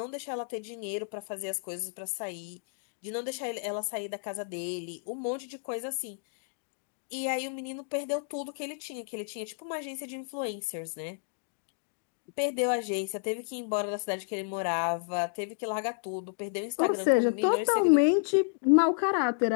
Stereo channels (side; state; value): right; silent; digital silence